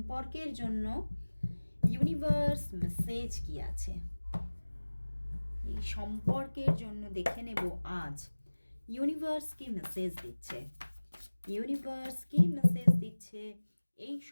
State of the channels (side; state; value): both; inverted; correlation -1.00